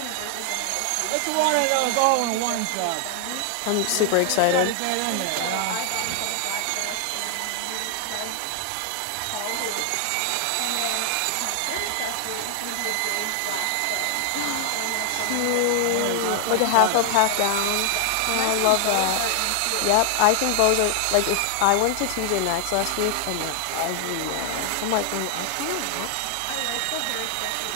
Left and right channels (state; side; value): different; both; correlation 0.00